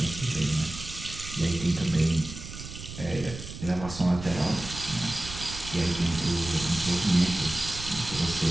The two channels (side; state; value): right; noise; rumble, 11 dB below the sound